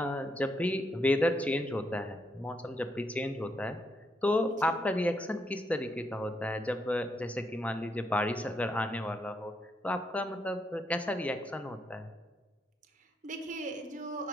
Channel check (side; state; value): both; normal; correlation 0.78